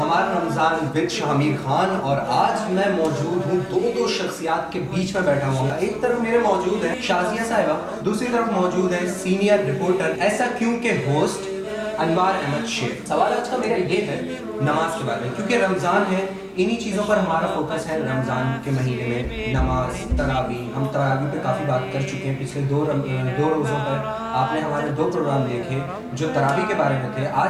رمضان وتھ شامیر خان، اور آج میں موجود ہوں دو شخصیات کے بیچ میں بیٹھا ہوں. ایک طرف میرے موجود ہیں شازیہ صاحبہ، دوسری طرف موجود ہیں سینئر رپورٹر ایسا کیوں کے ہوسٹ انوار احمد شیر. سوال آج کا میرا یہ ہے نماز کے بارے میں، کیونکہ رمضان ہے، انہی چیزوں پر ہمارا فوکس ہے. رمضان کے مہینے میں نماز، تراویح، ہم تراویح پہ کافی بات کر چکے ہیں. پچھلے دو روزوں پر آپ نے ہمارے 2 پروگرام دیکھے جو تراویح کے بارے میں تھے.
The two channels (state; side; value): identical; both; correlation 1.00